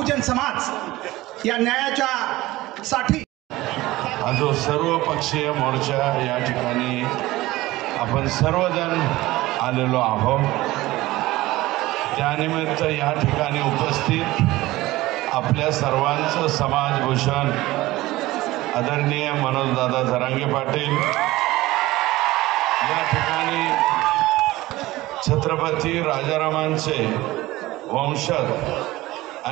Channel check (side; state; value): left; quieter; 18.1 dB